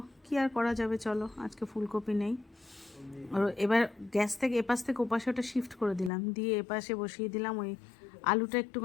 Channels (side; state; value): right; drops out; at 6.1 s